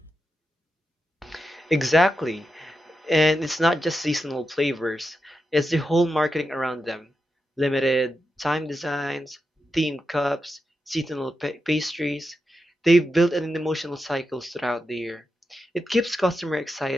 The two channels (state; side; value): normal; both; correlation 0.88